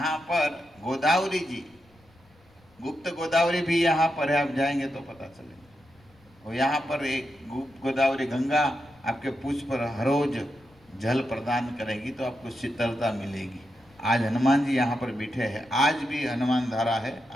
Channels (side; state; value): left; noise; rumble, 30 dB below the sound